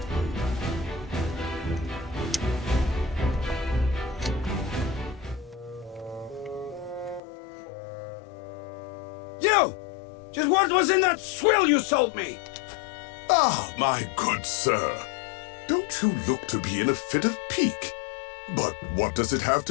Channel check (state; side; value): drops out; right; at 7.2 s